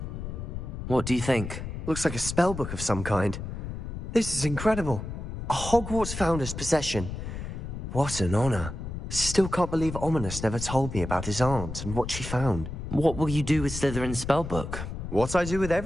What do you think? Looks like a spellbook of some kind. This is incredible. A Hogwarts founder's possession. What an honor. Still can't believe Ominous never told me about his aunt and what she found. What will you do with Slytherin's spellbook? What I do with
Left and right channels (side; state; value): left; noise; rumble, 7 dB below the sound